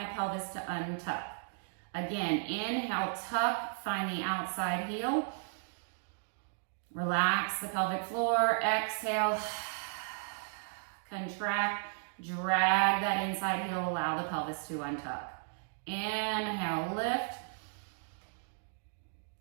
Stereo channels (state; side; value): silent; left; digital silence